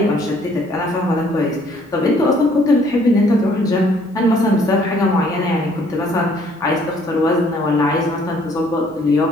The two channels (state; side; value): normal; both; correlation 0.62